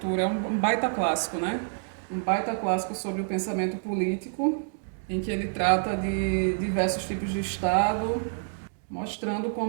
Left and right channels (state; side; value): silent; left; digital silence